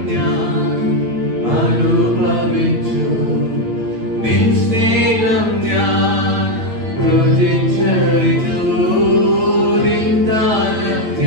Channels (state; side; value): late; left; 9.0 ms